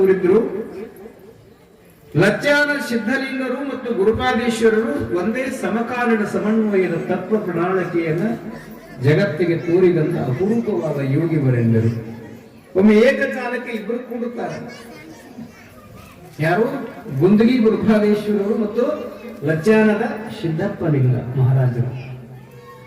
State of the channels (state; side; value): identical; both; correlation 1.00